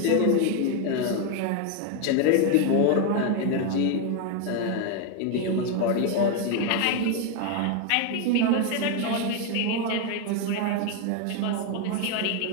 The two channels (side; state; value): both; different; correlation 0.01